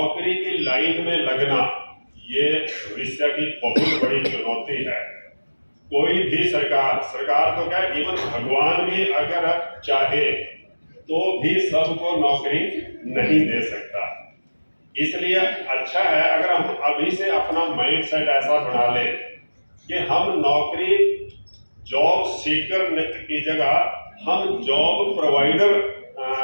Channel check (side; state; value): both; inverted; correlation -1.00